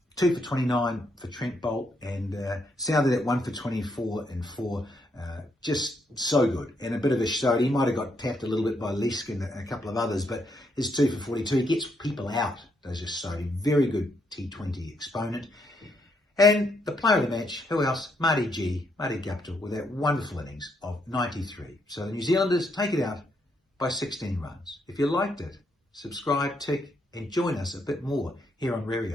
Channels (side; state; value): both; normal; correlation 0.76